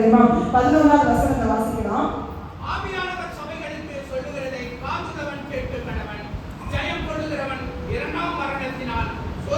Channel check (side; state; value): both; identical; correlation 1.00